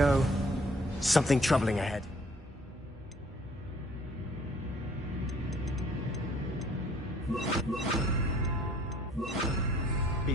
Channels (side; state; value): both; normal; correlation 0.58